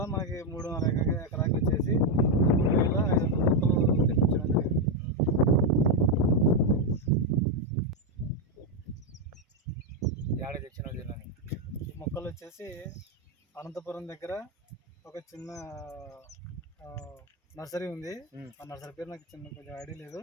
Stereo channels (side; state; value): both; normal; correlation 0.03